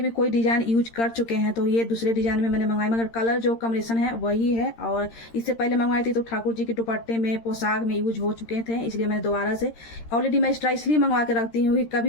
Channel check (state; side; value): late; right; 13 ms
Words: भी कोई डिज़ाइन यूज कर चुके हैं तो ये दूसरे डिज़ाइन में मैंने मंगाई, मगर कलर जो कॉम्बिनेशन है वही है। और इससे पहले मंगवाई थी तो ठाकुर जी के दुपट्टे में, पोशाक में यूज हो चुके थे, इसलिए मैंने दोबारा से ऑलरेडी मैं एक्स्ट्रा इसलिए मंगवा के रखती हूँ कि